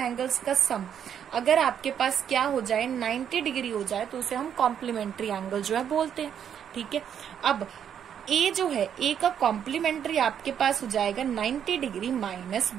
का सम अगर आपके पास क्या हो जाए, 90 डिग्री हो जाए, तो उसे हम कॉम्प्लीमेंट्री एंगल जो है बोलते हैं। ठीक है, अब ए जो है, ए का कॉम्प्लीमेंट्री आपके पास हो जाएगा 90 डिग्री माइनस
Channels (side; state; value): left; quieter; 8.8 dB